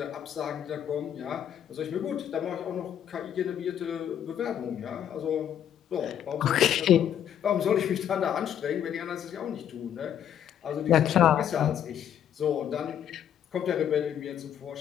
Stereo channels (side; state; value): right; quieter; 9.8 dB